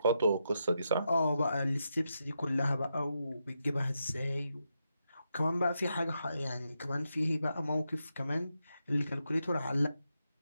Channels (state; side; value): inverted; both; correlation -0.84